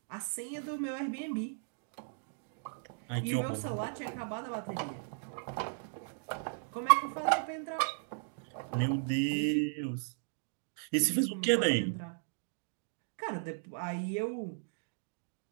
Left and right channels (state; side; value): silent; left; digital silence